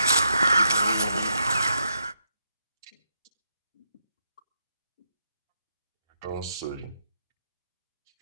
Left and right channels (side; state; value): both; inverted; correlation -0.80